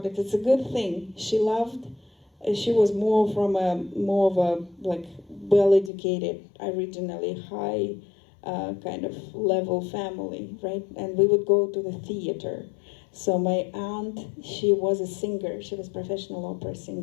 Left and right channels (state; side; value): drops out; right; at 5.9 s